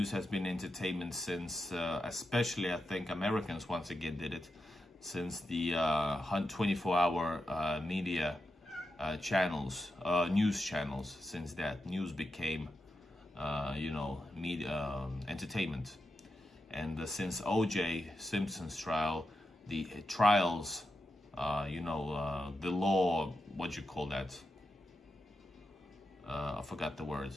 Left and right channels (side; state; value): both; normal; correlation 0.88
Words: has been entertainment since, especially I think Americans once again did it, since the 24-hour media channels, news channels. Since that, news became, you know, media entertainment. And since O.J. Simpson's trial, the trials, you know, the law, what you call that? I forgot the